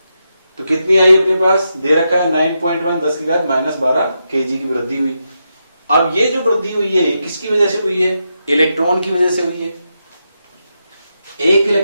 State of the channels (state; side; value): inverted; both; correlation -0.85